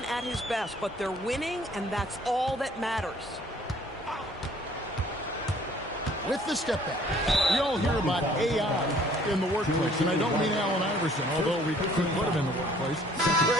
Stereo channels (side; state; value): both; normal; correlation 0.57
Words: at his best, but they're winning, and that's all that matters. With the step back. We all hear about AI in the workplace, and I don't mean Allen Iverson, although we could put him in the workplace.